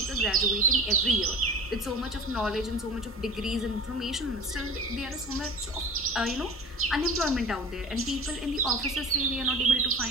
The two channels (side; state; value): both; normal; correlation 0.36